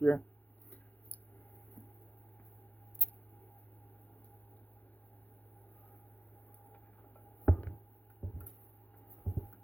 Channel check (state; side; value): late; right; 0.080 ms